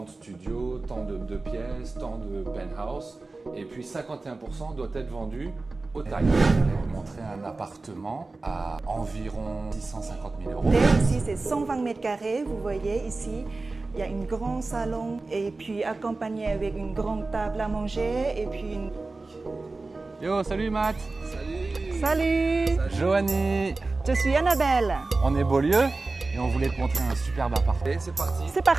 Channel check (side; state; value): left; quieter; 3.5 dB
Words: de studios, tant de pièces, tant de penthouse. Et puis 51% doit être vendu au Thaï. Je vais vous montrer un appartement à environ 650 000 euros. Ici, c'est 120 mètres carrés. Vous voyez ici, il y a un grand salon et puis accompagné avec une grande table à manger et puis une... Yo, salut Matt. Salut. Joanie. Je suis Annabelle. On est Beaulieu et on voulait te montrer un superbe appartement. Et c'est parti. C'est